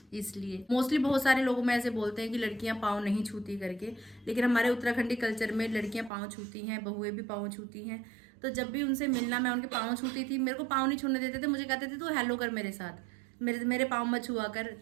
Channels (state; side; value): drops out; left; at 6.1 s